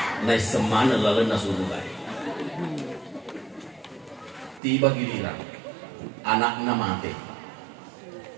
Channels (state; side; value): drops out; left; at 4.6 s